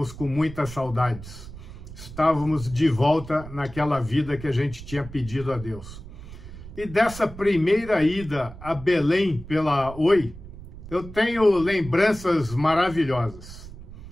com muitas saudades. Estávamos de volta naquela vida que a gente tinha pedido a Deus. E dessa primeira ida a Belém pela Oi, eu tenho lembranças maravilhosas.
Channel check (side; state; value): right; noise; rumble, 14 dB below the sound